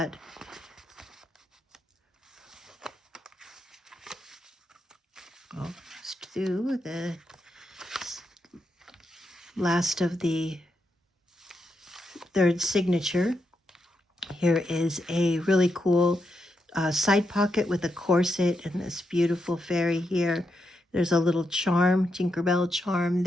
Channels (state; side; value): normal; both; correlation 0.83